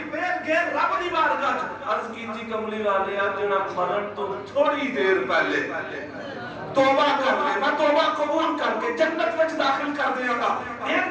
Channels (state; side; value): identical; both; correlation 1.00